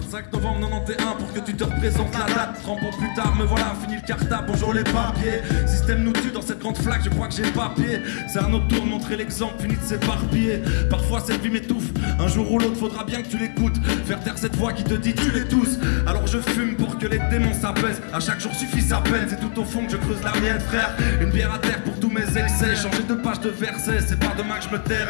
novembre 91 pour que tu te représentes la date. 30 ans plus tard, me voilà, fini le cartable, bonjour les papiers. Système nous tue dans cette grande flaque, je crois que j'ai papier. C'est un autre tour, montrer l'exemple, fini de s'éparpiller. Parfois cette vie m'étouffe, un jour ou l'autre faudra bien que tu l'écoutes. Faire taire cette voix qui te dit tu les tous. Alors je fume pour que les démons s'apaisent. À chaque jour suffit sa peine, c'est tout au fond que je creuse la mienne frère. Une bière à terre pour tous mes excès. Changer de page de verset, c'est pas demain que je me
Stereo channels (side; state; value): right; silent; 64 dB below the other